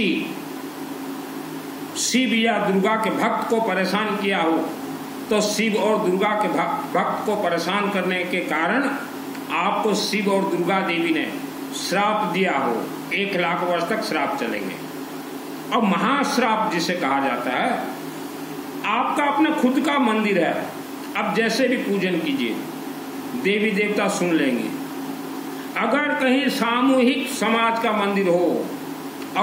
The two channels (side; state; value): both; identical; correlation 1.00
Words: शिव या दुर्गा के भक्त को परेशान किया हो, तो शिव और दुर्गा के भक्त को परेशान करने के कारण आपको शिव और दुर्गा देवी ने श्राप दिया हो, 1 लाख वर्ष तक श्राप चलेंगे। और महाश्राप जिसे कहा जाता है, आपका अपना खुद का मंदिर है, अब जैसे भी पूजन कीजिए, देवी देवता सुन लेंगे। अगर कहीं सामूहिक समाज का मंदिर हो